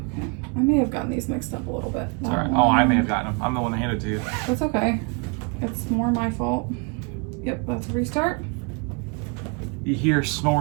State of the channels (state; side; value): quieter; left; 32.9 dB